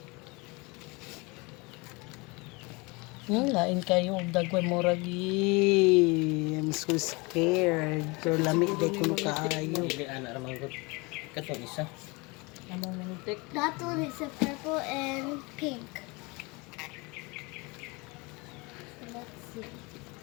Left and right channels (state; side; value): quieter; right; 26.7 dB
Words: Lain kayo og dagway moragi. I'm so scared. Pero lami day kuno kaayo. Dili ana ra manggod. Katong isa. That one is a purple and pink. Let's see.